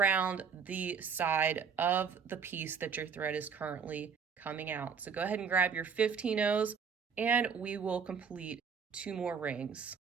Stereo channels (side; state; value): left; quieter; 6.3 dB